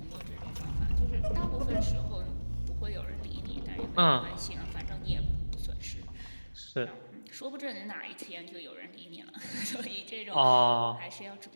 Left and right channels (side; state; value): both; inverted; correlation -1.00